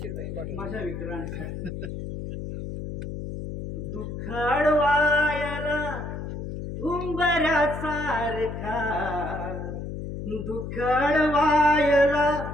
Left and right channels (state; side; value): noise; left; hum, 7 dB below the sound